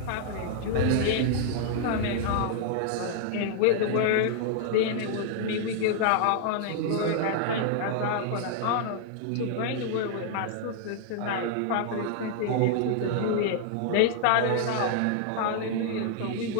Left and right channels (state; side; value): different; both; correlation -0.01